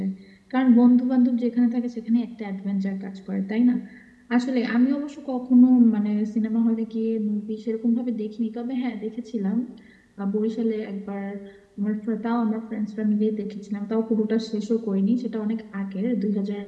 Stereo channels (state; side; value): identical; both; correlation 1.00